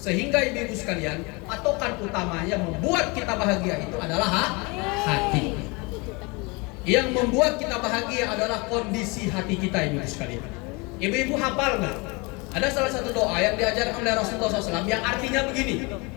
ibu-ibu sekalian, patokan utamanya membuat kita bahagia itu adalah hati. Yang membuat kita bahagia adalah kondisi hati kita, ibu-ibu sekalian. Ibu-ibu hafal nggak? Ada salah satu doa yang diajarkan oleh Rasulullah SAW yang artinya begini:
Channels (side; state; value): right; quieter; 27.8 dB